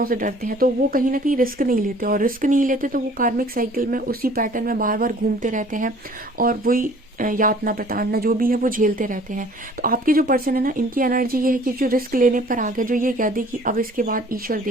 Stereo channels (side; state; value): both; normal; correlation 0.52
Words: से डरते हैं। तो वो कहीं ना कहीं रिस्क नहीं लेते, और रिस्क नहीं लेते तो वो कार्मिक साइकिल में उसी पैटर्न में बार बार घूमते रहते हैं, और वही यातना प्रताड़ना जो भी है वो झेलते रहते हैं। तो आपके जो पर्सन है ना, इनकी एनर्जी ये है कि जो रिस्क लेने पर आ गया, जो ये कह दे कि अब इसके बाद ईश्वर